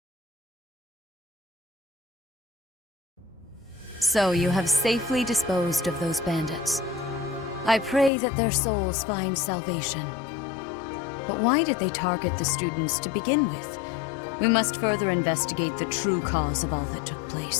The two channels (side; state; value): right; drops out; at 8.1 s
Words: So you have safely disposed of those bandits. I pray that their souls find salvation. But why did they target the students to begin with? We must further investigate the true cause of all that took